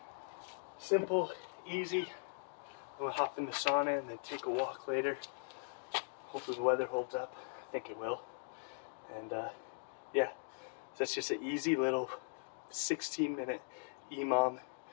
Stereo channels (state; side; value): silent; right; digital silence